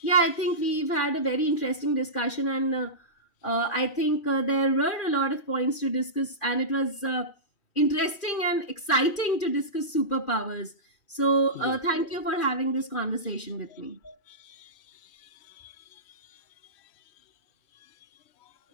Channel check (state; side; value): late; right; 3.1 ms